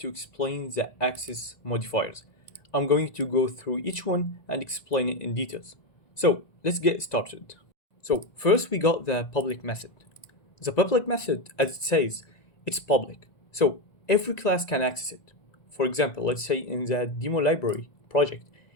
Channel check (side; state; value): right; late; 1.9 ms